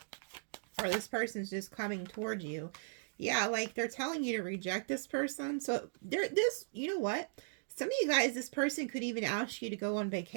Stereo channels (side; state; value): left; silent; digital silence